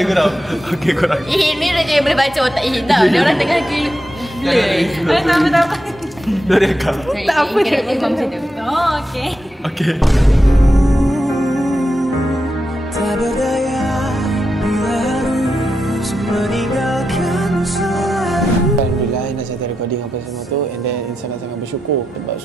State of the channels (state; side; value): normal; both; correlation 0.87